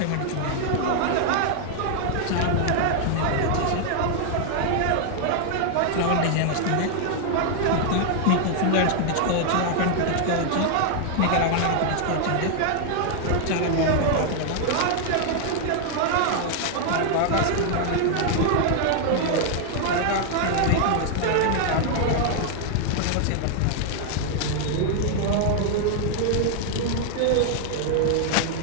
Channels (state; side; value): different; both; correlation 0.00